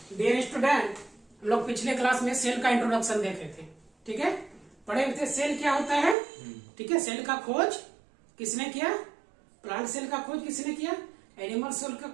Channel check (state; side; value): drops out; left; at 6.2 s